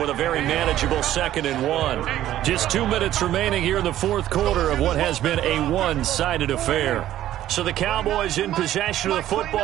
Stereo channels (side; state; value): left; quieter; 13.0 dB